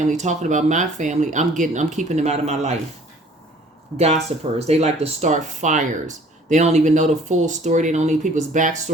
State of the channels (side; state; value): both; normal; correlation 0.53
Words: talking about my family. I'm keeping them out of my life. Gossipers. They like to start fires. They don't even know the full story. They don't need people's